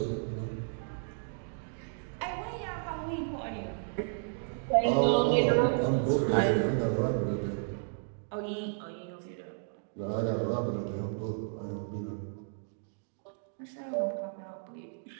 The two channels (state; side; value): silent; left; digital silence